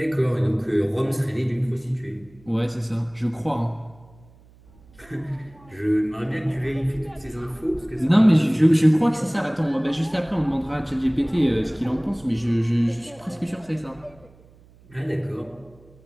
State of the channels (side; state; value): right; noise; hum, 27 dB below the sound